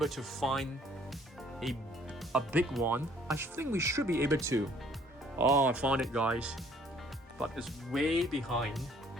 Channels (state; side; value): normal; both; correlation 0.60